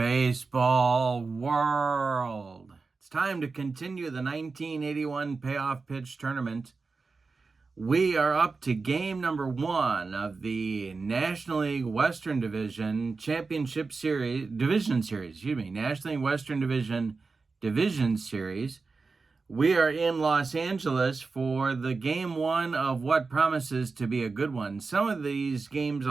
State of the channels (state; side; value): quieter; left; 4.3 dB